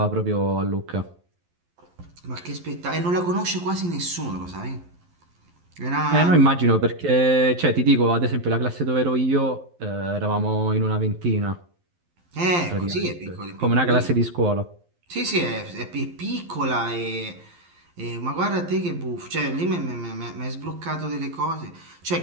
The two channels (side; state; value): left; late; 11 ms